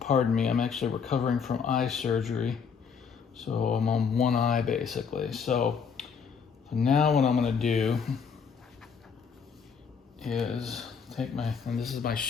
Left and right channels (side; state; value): right; quieter; 6.2 dB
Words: me, I'm actually recovering from eye surgery, so I'm on one eye basically. So now what I'm going to do is take and this is my